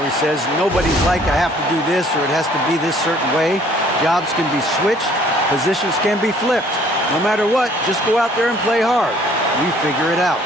says, nobody's like, I have to do this or it has to be this certain way. Jobs can be switched. Positions can be flipped. No matter what, just go out there and play hard. We figure it out.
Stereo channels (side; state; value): both; normal; correlation 0.58